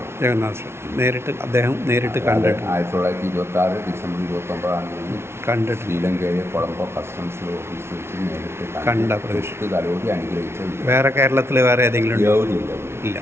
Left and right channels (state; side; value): late; left; 0.12 ms